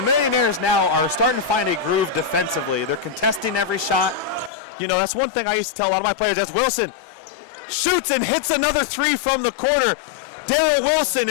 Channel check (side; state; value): right; drops out; at 4.5 s